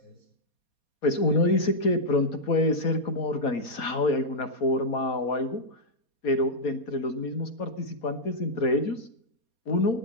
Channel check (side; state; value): right; late; 4.2 ms